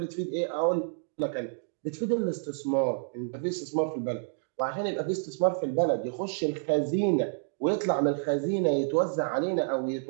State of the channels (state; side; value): silent; left; digital silence